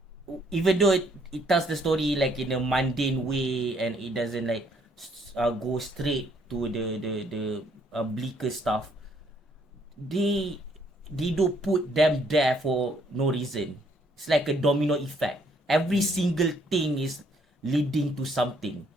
even though it tells the story like in a mundane way, and it doesn't like go straight to the bleaker stuff, they do put them there for no reason. It's like a domino effect. Every single thing is leading to something.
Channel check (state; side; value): normal; both; correlation 0.67